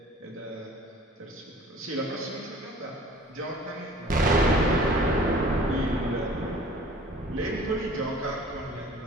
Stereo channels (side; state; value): both; normal; correlation 0.49